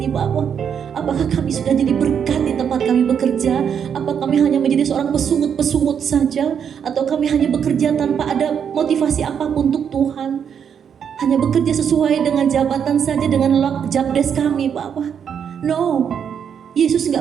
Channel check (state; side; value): quieter; left; 7.8 dB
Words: Bapa? Apakah kami sudah jadi berkat di tempat kami bekerja? Apa kami hanya menjadi seorang pesungut-pesungut saja? Atau kami hanya bekerja tanpa ada motivasi apapun untuk Tuhan? Hanya bekerja sesuai dengan jabatan saja, dengan job desk kami Bapa? No, Yesus